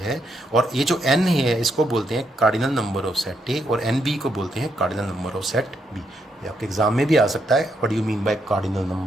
है, और ये जो एन है इसको बोलते हैं cardinal number of set A, और एन बी को बोलते हैं cardinal number of set B. ये आपके एग्जाम में भी आ सकता है, what do you mean by cardinal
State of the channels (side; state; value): both; normal; correlation 0.78